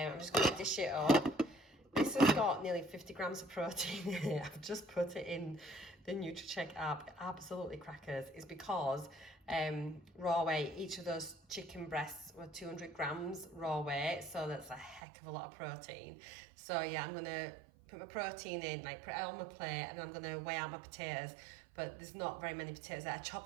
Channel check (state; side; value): drops out; left; at 15.0 s